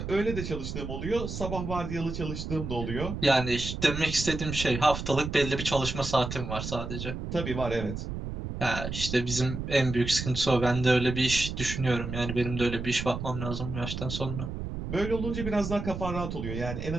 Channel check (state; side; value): noise; right; rumble, 6 dB below the sound